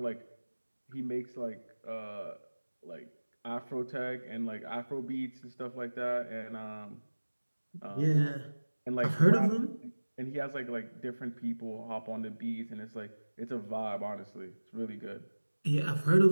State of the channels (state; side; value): inverted; both; correlation -1.00